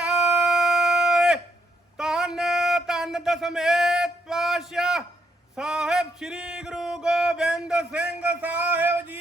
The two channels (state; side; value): normal; both; correlation 0.74